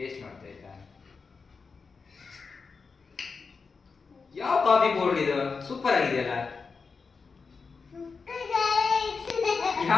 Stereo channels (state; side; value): quieter; right; 4.9 dB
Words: ಮಾಡ್ತಾ ಆಯ್ತಾ? ಯಾವ ಕಾಫಿ ಪೌಡರ್ ಇದು? ಸೂಪರ್ ಆಗಿದೆಯಲ್ಲ.